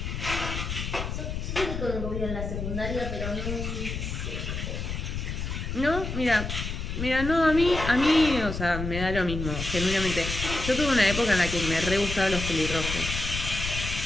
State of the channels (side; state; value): left; noise; rumble, 5 dB below the sound